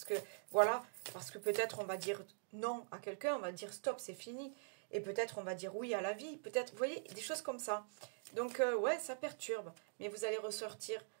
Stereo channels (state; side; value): silent; left; digital silence